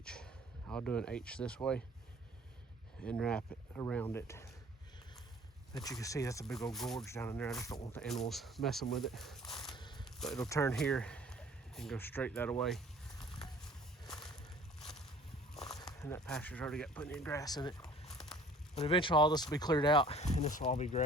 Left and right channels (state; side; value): normal; both; correlation 0.51